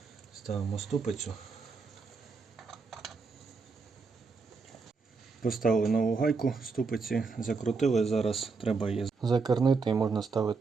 Ставимо ступицю. Поставили нову гайку ступиці, закрутили, зараз треба її закернити і можна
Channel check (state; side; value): quieter; left; 4.5 dB